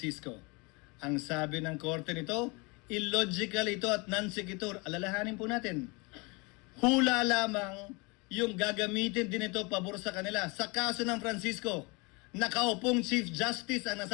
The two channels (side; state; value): right; quieter; 28.5 dB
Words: Ang sabi ng korte nito, illogical ito at non-sequitur. Alalahanin po natin. Hula lamang yung gagamitin din ito pabor sa kanila. Sa kaso ng Francisco, nakaupong Chief Justice ang